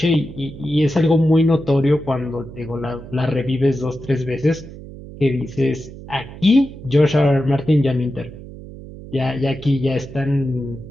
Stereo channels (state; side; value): noise; right; hum, 15 dB below the sound